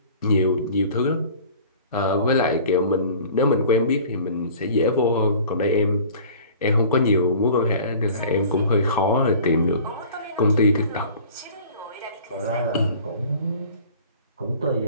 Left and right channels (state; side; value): inverted; both; correlation -0.45